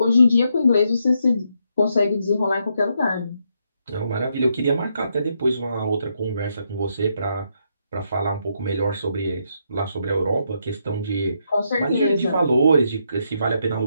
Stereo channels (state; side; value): inverted; both; correlation -0.78